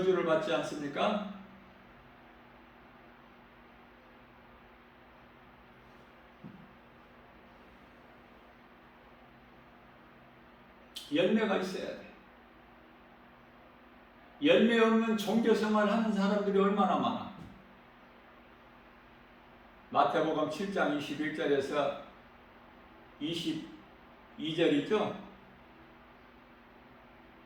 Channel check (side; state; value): both; identical; correlation 1.00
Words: 받지 않습니까? 열매가 있어야 돼. 열매 없는 종교생활 하는 사람들이 얼마나 많아. 마태복음 7장 21절에서 22절이죠.